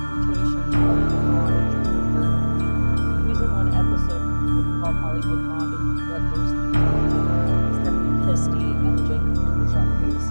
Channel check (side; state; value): both; inverted; correlation -1.00